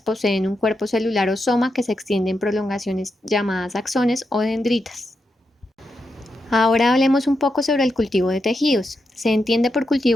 un cuerpo celular o soma que se extiende en prolongaciones llamadas axones o dendritas. Ahora hablemos un poco sobre el cultivo de tejidos. Se entiende por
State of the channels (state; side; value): normal; both; correlation 0.85